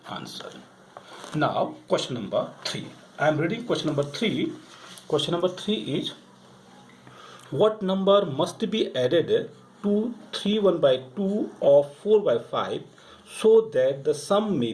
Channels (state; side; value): identical; both; correlation 1.00